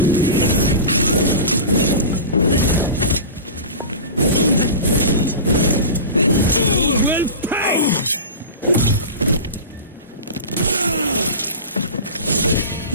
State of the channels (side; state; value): both; inverted; correlation -0.31